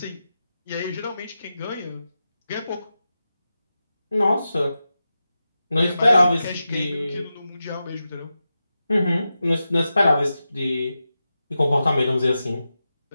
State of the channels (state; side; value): inverted; both; correlation -0.91